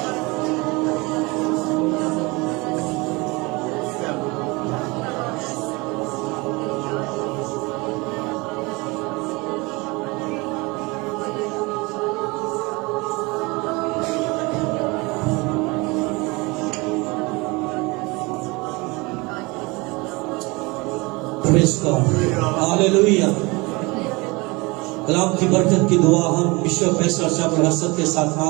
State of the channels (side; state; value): left; quieter; 25.4 dB